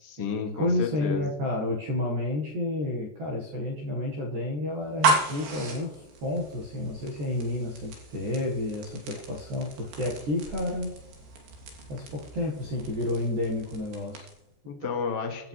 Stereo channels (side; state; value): left; late; 14 ms